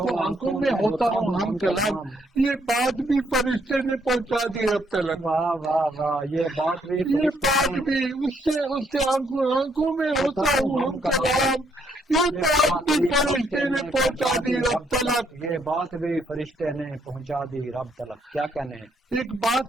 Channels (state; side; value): normal; both; correlation 0.72